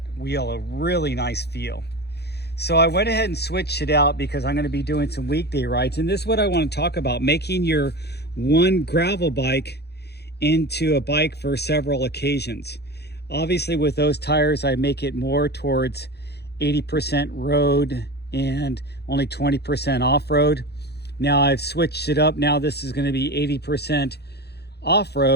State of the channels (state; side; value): late; right; 0.48 ms